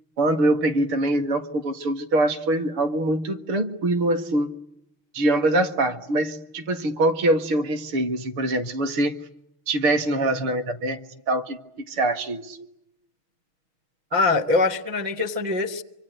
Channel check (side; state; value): left; late; 6.3 ms